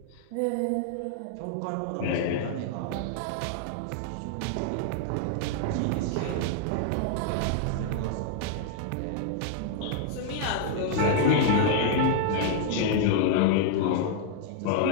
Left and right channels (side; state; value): both; different; correlation 0.00